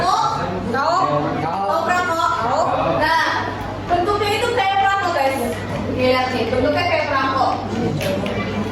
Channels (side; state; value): both; identical; correlation 1.00